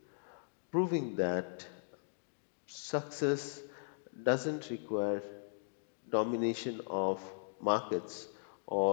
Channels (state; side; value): silent; right; digital silence